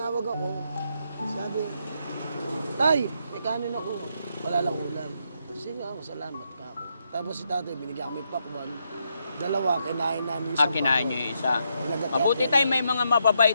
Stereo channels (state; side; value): inverted; both; correlation -0.79